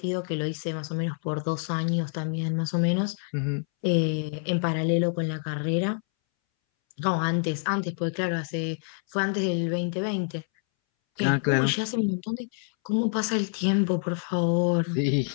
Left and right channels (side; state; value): right; silent; 60 dB below the other